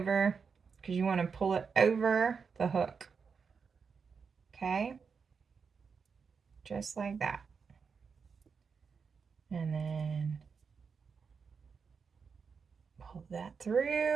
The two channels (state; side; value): quieter; left; 5.7 dB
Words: because you want to pull it over the hook. Okay? Just like that. And then pull that